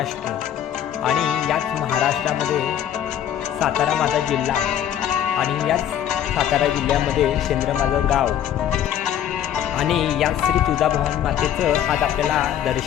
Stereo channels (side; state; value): right; quieter; 10.2 dB